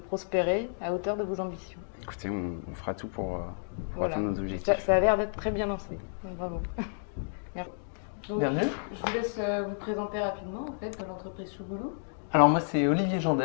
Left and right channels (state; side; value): silent; right; digital silence